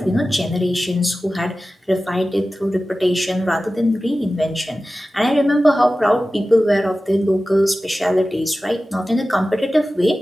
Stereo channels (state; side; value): normal; both; correlation 0.95